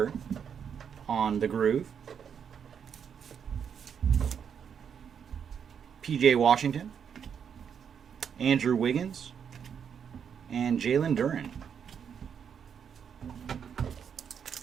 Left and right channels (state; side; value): quieter; left; 7.5 dB